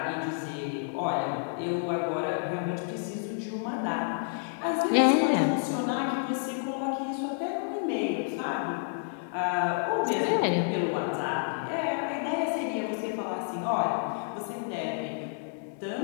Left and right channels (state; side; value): silent; right; 58 dB below the other